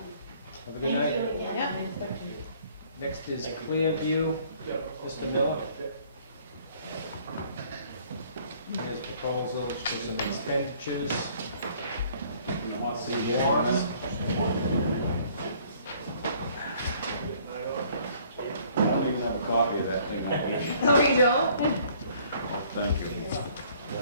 a good Thank night. you again. Yeah. Next is Clearview, Yeah. Mr. Miller. Yeah. Here's proposals for some expenditures. Some warrants. I don't even have a copy of that thing. Oh, you don't? Thank you.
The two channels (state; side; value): inverted; both; correlation -0.59